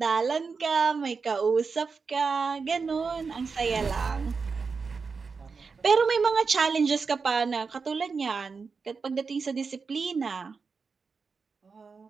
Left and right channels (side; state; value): left; quieter; 5.0 dB